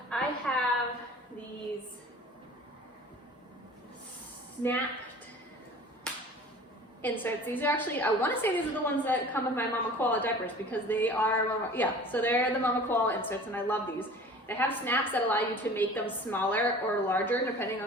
I have these snapped inserts. These are actually, I want to say these are the ones that come with my Mama Koala diapers because they are, so they're the Mama Koala inserts and I love these. They have snaps that allow you to make them smaller or larger depending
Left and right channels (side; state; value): both; normal; correlation 0.43